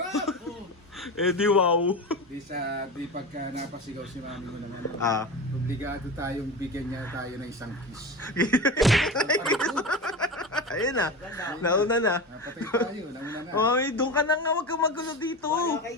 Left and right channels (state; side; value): normal; both; correlation 0.26